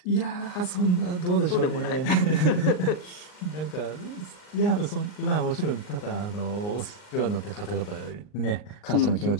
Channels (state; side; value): late; right; 39 ms